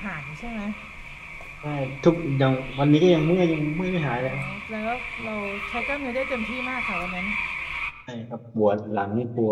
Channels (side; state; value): both; identical; correlation 1.00